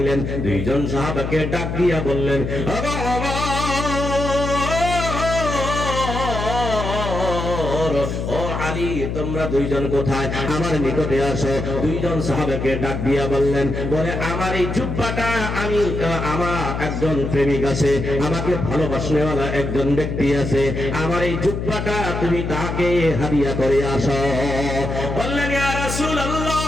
দুইজন সাহাবাকে ডাক দিয়া বললেন, ও আলী, তোমরা দুইজন কোথায়? আমার নিকটে আসো। দুইজন সাহাবাকে ডাক দিয়া বললেন, বলে আমার এই জুব্বাটা, আমার একজন প্রেমিক আছে, আমাকে ভালোবাসনেওয়ালা একজন ব্যক্তি আছে, আমার এই জুব্বাটা তুমি তাকে হাদিয়া করে আসো। বললেন, ইয়া রাসূলুল্লাহ,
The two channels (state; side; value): noise; left; hum, 3 dB below the sound